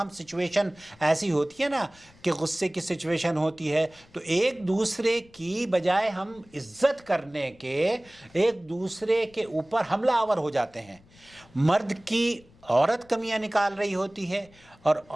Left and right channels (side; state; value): left; noise; rumble, 27 dB below the sound